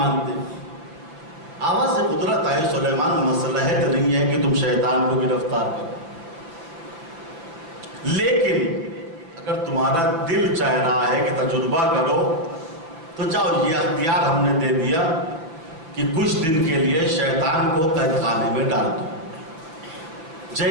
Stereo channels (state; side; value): late; left; 6.2 ms